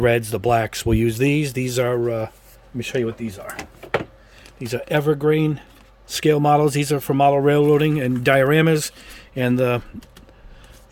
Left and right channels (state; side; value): identical; both; correlation 1.00